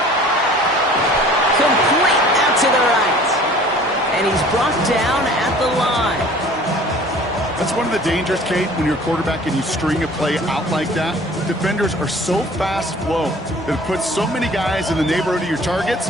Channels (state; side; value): normal; both; correlation 0.49